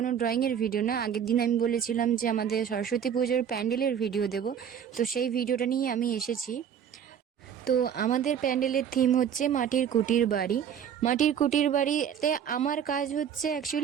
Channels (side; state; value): left; quieter; 8.5 dB